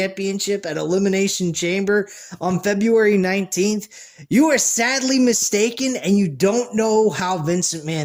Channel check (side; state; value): both; identical; correlation 1.00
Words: at Elimination Chamber on February 19th, you are sadly mistaken and you don't know how Vincent